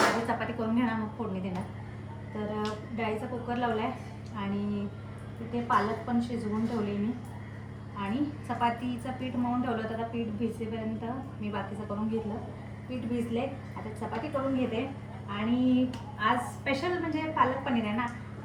चपाती करून घेणार, मग फोडणी देणार। तर डाळीचा कुकर लावलाय आणि तिथे पालक पण शिजवून ठेवली मी, आणि चपातीचं पीठ मळून ठेवलं होतं। आता पीठ भिजेपर्यंत मी बाकीचं करून घेतलं। पीठ भिजले, आता चपाती करून घेते। आणि आज स्पेशल म्हणजे पालक पनीर आहे ना,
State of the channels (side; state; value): both; identical; correlation 1.00